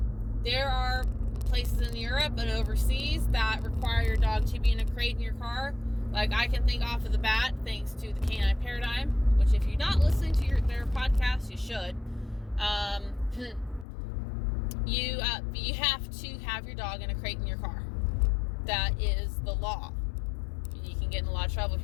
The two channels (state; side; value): drops out; right; at 13.9 s